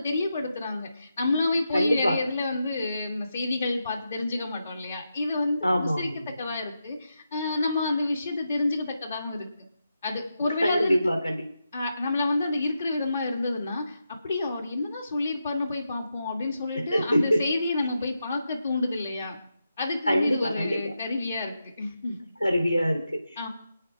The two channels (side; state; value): both; inverted; correlation -0.87